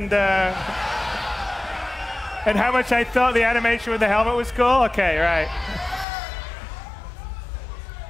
how much I thought the animation with the helmet was cool? Okay, right.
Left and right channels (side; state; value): right; drops out; at 6.1 s